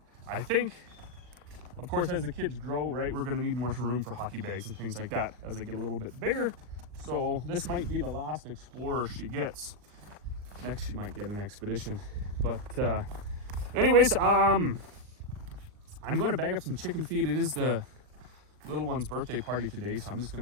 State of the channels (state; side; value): late; left; 39 ms